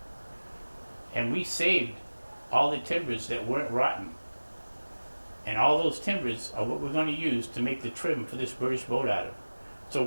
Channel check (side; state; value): both; inverted; correlation -1.00